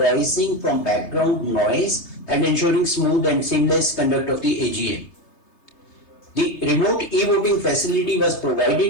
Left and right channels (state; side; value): late; right; 3.3 ms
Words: from background noise and ensuring smooth and seamless conduct of the AGM. The remote e-voting facility was